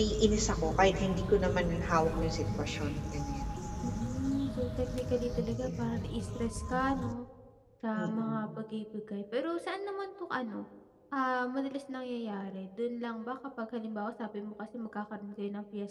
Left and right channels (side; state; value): both; identical; correlation 1.00